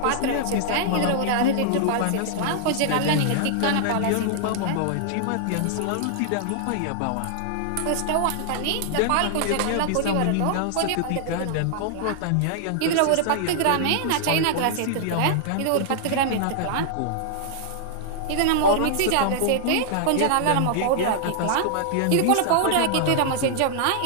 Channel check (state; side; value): different; both; correlation -0.01